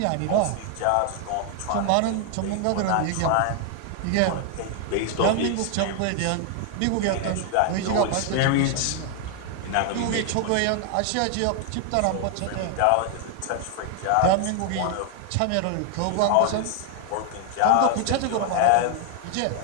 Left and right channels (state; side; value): different; both; correlation 0.00